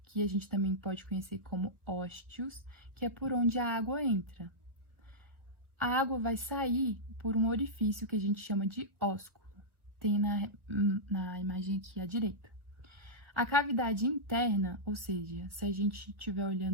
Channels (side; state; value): left; late; 1.3 ms